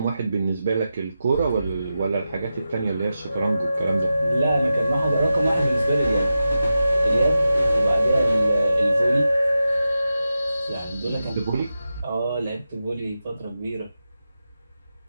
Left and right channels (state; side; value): inverted; both; correlation -0.91